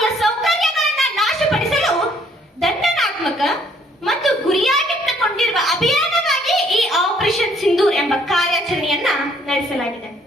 ಸೌಕರ್ಯಗಳನ್ನ ನಾಶಪಡಿಸಲು ದಂಡನಾತ್ಮಕ ಮತ್ತು ಗುರಿಯಾಗಿಟ್ಟುಕೊಂಡಿರುವ ಅಭಿಯಾನವಾಗಿ ಈ ಆಪರೇಷನ್ ಸಿಂಧೂರ್ ಎಂಬ ಕಾರ್ಯಾಚರಣೆಯನ್ನ ನಡೆಸಲಾಗಿದೆ.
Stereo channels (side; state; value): both; normal; correlation 0.64